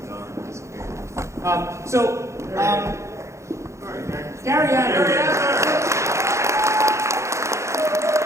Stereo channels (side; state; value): left; late; 0.14 ms